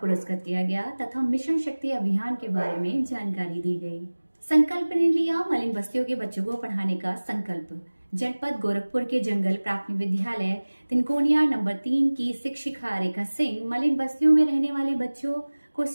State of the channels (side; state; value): both; inverted; correlation -1.00